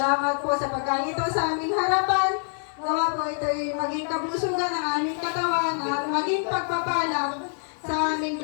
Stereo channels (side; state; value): right; silent; digital silence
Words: po sa pagkain ito sa aming harapan. Gawa po ito ay maging kablusugan ng aming katawan at maging pagpapalang sa aming